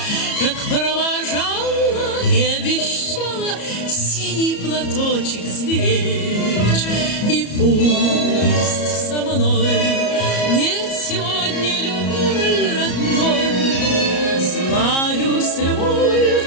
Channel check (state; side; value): late; right; 34 ms